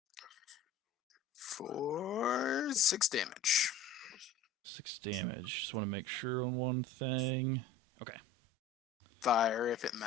For 6 damage. 6 damage. Just want to make sure on one thing. Okay. Fire if it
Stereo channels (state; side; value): quieter; right; 3.4 dB